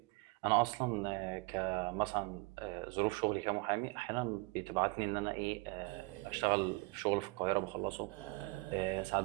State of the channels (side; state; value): left; quieter; 27.1 dB